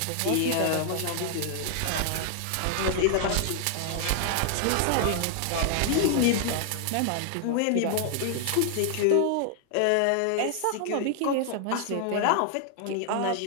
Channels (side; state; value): both; different; correlation 0.00